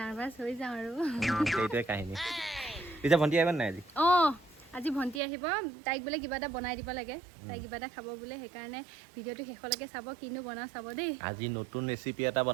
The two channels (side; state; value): left; drops out; at 5.2 s